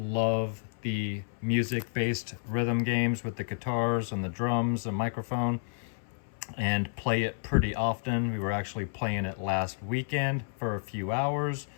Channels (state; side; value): silent; right; 57 dB below the other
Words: the music-based rhythm games with the guitars and the drums and microphone, and play it pretty often. We were actually playing it last weekend for a few hours,